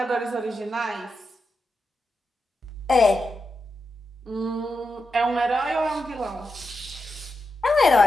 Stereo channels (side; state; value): both; normal; correlation 0.87